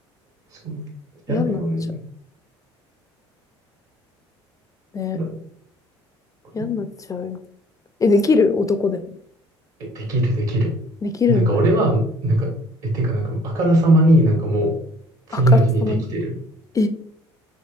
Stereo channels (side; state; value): both; normal; correlation 0.57